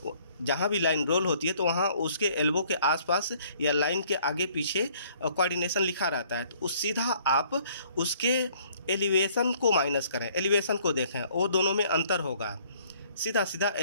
जहाँ भी लाइन रोल होती है तो वहाँ उसके एल्बो के आसपास या लाइन के आगे पीछे कोऑर्डिनेशन लिखा रहता है, तो उस सीधा आप उसके एलिवेशन को माइनस करें, एलिवेशन को देखें, वो दोनों में अंतर होगा, सीधा सीधा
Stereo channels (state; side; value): inverted; both; correlation -0.60